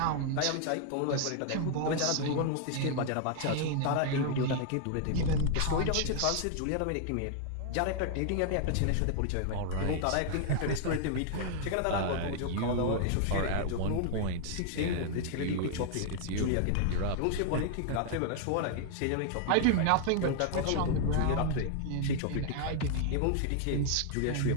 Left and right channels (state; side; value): different; both; correlation 0.00